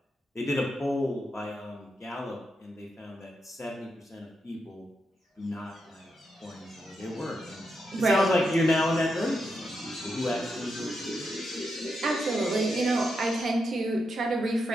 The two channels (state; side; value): normal; both; correlation 0.84